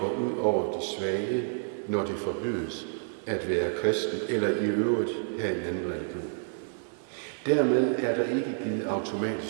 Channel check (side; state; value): left; silent; 58 dB below the other